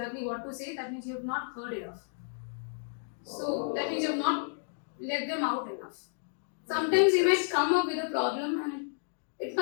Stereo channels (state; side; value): silent; right; digital silence